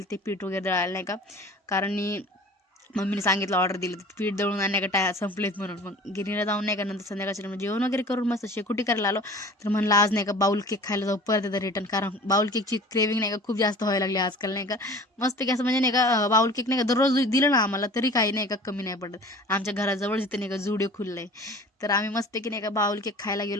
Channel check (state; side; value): normal; both; correlation 0.43